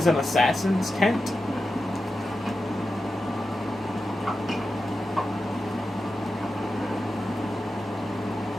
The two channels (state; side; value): normal; both; correlation 0.91